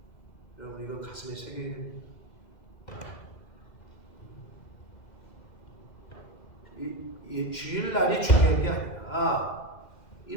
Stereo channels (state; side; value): late; right; 2.0 ms